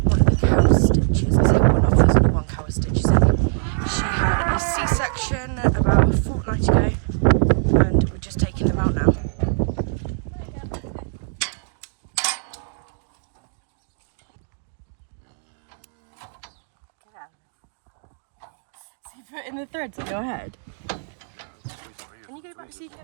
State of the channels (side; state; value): left; silent; digital silence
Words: one of the cow stitches. I say one of, there's only one cow with stitches in. She had a C-section about a fortnight ago and we're just taking them out now. So you put in the threads on your head? Can you go back so you can